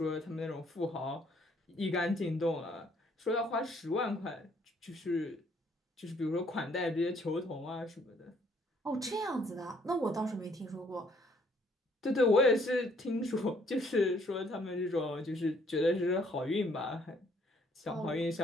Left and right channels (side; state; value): both; normal; correlation 0.64